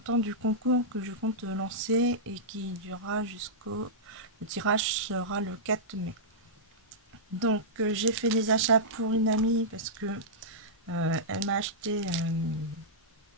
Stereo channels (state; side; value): normal; both; correlation -0.13